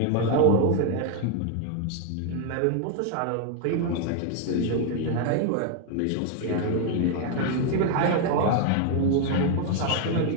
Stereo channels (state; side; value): different; both; correlation 0.00